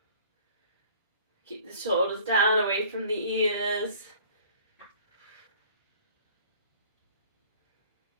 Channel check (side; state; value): both; inverted; correlation -0.51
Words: Keep the shoulders down, away from the ears.